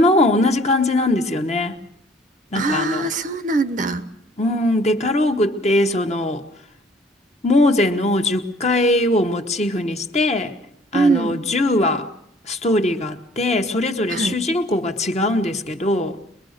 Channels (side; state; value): both; normal; correlation 0.57